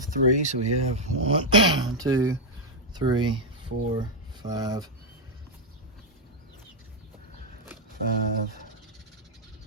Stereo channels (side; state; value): both; normal; correlation -0.02